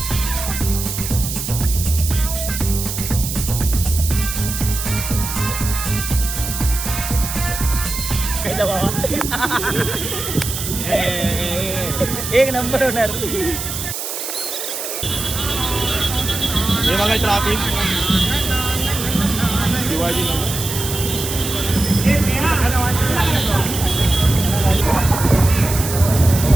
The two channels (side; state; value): right; noise; hiss, 5 dB below the sound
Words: एक नंबर होणार. हे बघा ट्रॅफिक शिवाजी